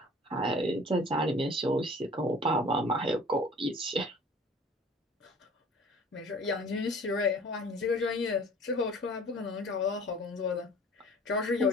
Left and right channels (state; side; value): normal; both; correlation 0.47